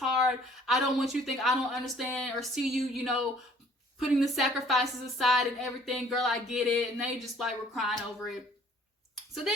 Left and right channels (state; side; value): normal; both; correlation 0.56